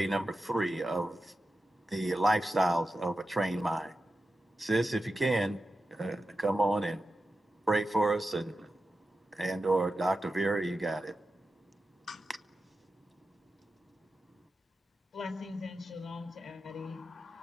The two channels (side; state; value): both; normal; correlation 0.91